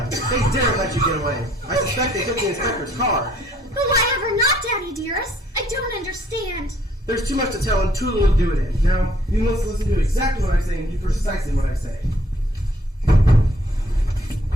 They dare let you get away. I suspect they took the inspector's car. But why ever not, Daddy dearest? I don't understand. There's too much to tell and too little to do it in. Now, you must listen to exactly what I say and do precisely what I say.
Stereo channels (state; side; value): normal; both; correlation 0.63